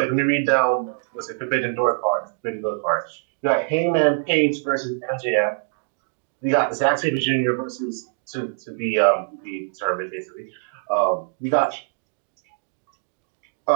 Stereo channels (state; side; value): silent; left; digital silence